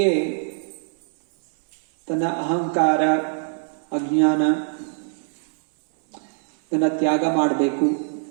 ತನ್ನ ಅಹಂಕಾರ, ಅಜ್ಞಾನ ಇದನ್ನು ತ್ಯಾಗ ಮಾಡಬೇಕು,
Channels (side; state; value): left; silent; 60 dB below the other